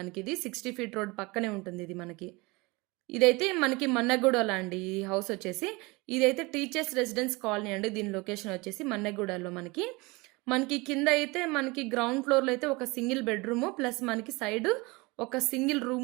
60 ఫీట్ రోడ్ పక్కనే ఉంటుంది. ఇది మనకి ఇదైతే మనకి మన్నెగూడలో అండి. ఈ హౌస్ వచ్చేసి ఇదైతే టీచర్స్ రెసిడెన్స్ కాలనీ అండి. దీని లొకేషన్ వచ్చేసి మన్నెగూడలో మనకి కింద అయితే మనకి గ్రౌండ్ ఫ్లోర్లో అయితే ఒక సింగిల్ బెడ్రూమ్ ప్లస్ మనకి సైడ్ ఒక సింగిల్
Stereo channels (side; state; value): left; quieter; 24.8 dB